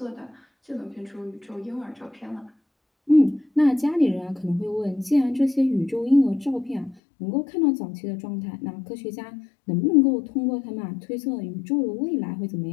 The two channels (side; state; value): right; drops out; at 7.0 s